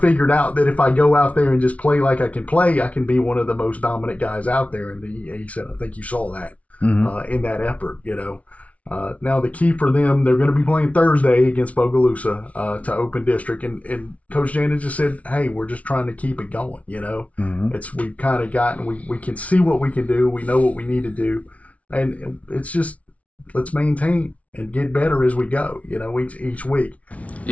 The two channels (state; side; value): late; right; 0.066 ms